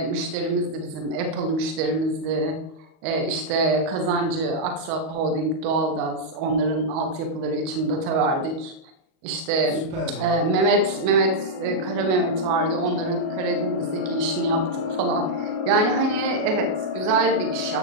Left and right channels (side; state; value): left; late; 38 ms